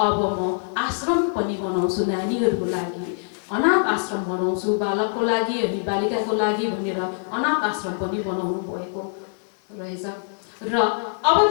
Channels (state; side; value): silent; right; digital silence